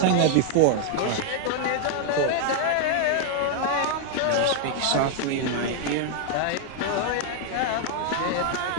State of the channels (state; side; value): different; both; correlation 0.00